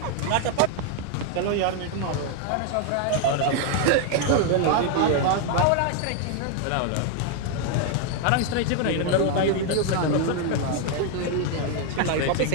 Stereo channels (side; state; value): both; different; correlation 0.00